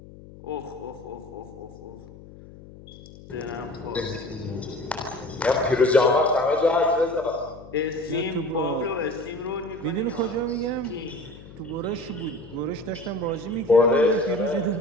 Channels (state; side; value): noise; left; hum, 18 dB below the sound